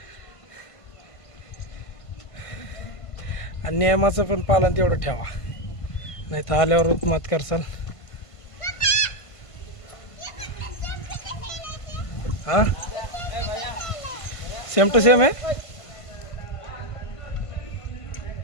आणि नियमाचं पण पालन तेवढं ठेवा. नाही तर आल्यावर मत करसाल. हा सेम टू सेम आहे.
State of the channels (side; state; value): right; late; 1.5 ms